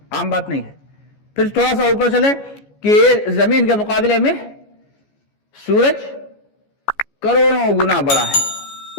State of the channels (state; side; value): late; right; 14 ms